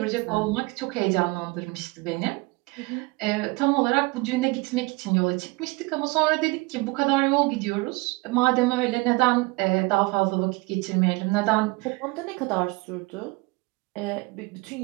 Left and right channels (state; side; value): quieter; left; 25.1 dB